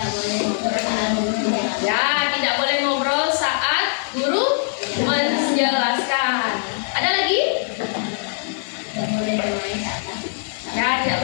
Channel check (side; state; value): right; silent; 64 dB below the other